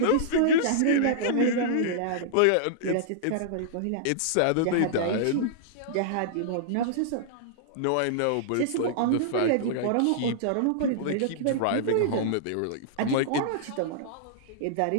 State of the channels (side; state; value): both; different; correlation -0.02